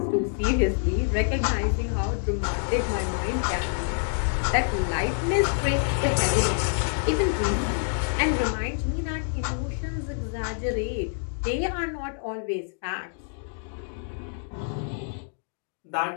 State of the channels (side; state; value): right; silent; digital silence